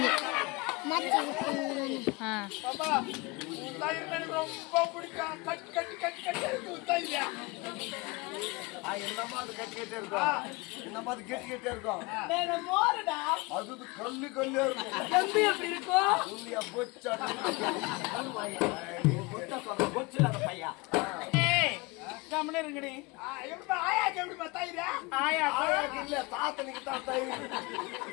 ரொம்ப பிடிக்கும். கட்டி கட்டி கட்டி கட்டி இருக்கும். அது கல்லு கல்லு இருக்கும். எப்படி இருக்கும்? கம்முனருங்கடி. ஆயாக்கு எப்படிமா தயிர்? ஆயாக்கு இல்ல, தாத்தனுக்கு தான் தயிர்.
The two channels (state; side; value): quieter; right; 25.2 dB